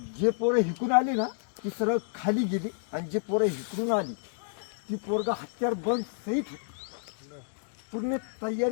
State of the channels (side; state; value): right; silent; digital silence